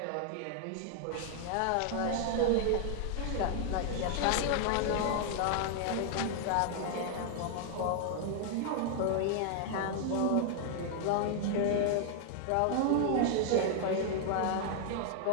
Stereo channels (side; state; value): both; different; correlation 0.00